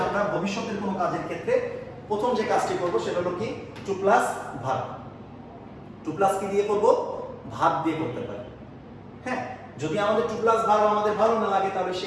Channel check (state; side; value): identical; both; correlation 1.00